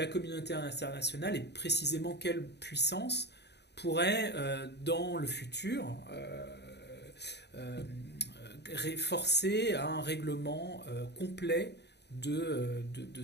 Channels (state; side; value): late; right; 0.49 ms